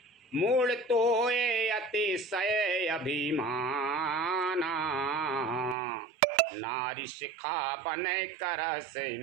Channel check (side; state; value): left; drops out; at 5.8 s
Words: मूल तो ये अतिशय अभिमाना, नारी शिखा बन कर से